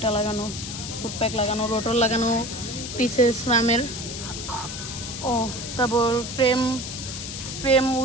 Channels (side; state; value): left; noise; hiss, 8 dB below the sound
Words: লাগানো, ফুটপ্যাক লাগানো, রোটর লাগানো পিছে স্ল্যামের। তারপর ফ্রেম